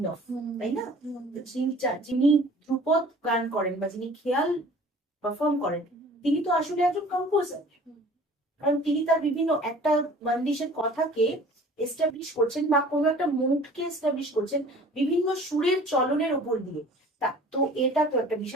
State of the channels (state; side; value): normal; both; correlation 0.47